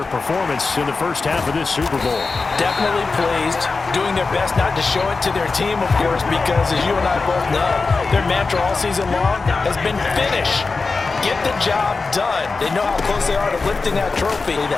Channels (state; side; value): quieter; right; 4.1 dB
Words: performance in the first half of this Super Bowl. Definitely pleased, doing their best not to show it to their team, of course, because as you and I both know, their mantra all season long has been finish. Get the job done. They know how close they are to lifting that trophy.